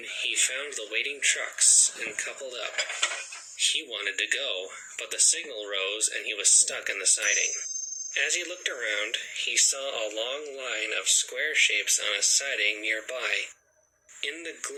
he found the waiting trucks and coupled up. He wanted to go, but the signal rose and he was stuck in the siding. As he looked around, he saw a long line of square shapes on a siding nearby. In the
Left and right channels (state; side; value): identical; both; correlation 1.00